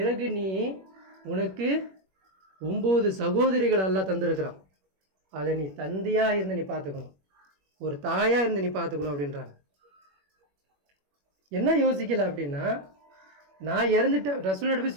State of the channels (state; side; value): late; left; 21 ms